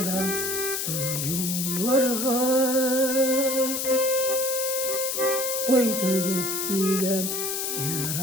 duyularga Koydup gilem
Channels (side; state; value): left; noise; hiss, 2 dB below the sound